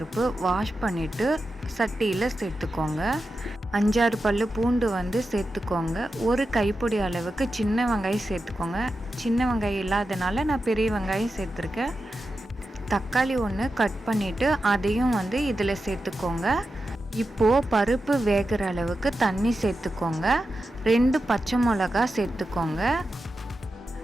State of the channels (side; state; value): both; normal; correlation 0.90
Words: வாஷ் பண்ணிவிட்டு சட்டியில் சேர்த்துக்கோங்க. 5-6 பல்லு பூண்டு சேர்த்துக்கோங்க. 1 கைப்பிடி அளவுக்கு சின்ன வெங்காயம் சேர்த்துக்கோங்க. சின்ன வெங்காயம் இல்லாதனால நான் பெரிய வெங்காயம் சேர்த்துருக்கேன். தக்காளி 1 கட் பண்ணிவிட்டு அதையும் இதில் சேர்த்துக்கோங்க. இப்போது பருப்பு வேகிற அளவுக்கு தண்ணி சேர்த்துக்கோங்க. 2 பச்சை மிளகா சேர்த்துக்கோங்க.